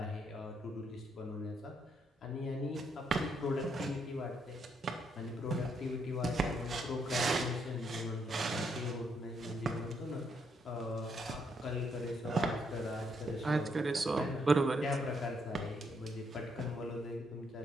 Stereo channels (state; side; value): normal; both; correlation 0.75